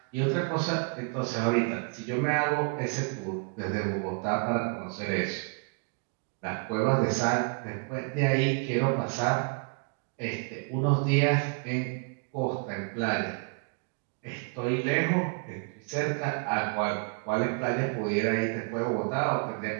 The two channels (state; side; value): quieter; left; 36.3 dB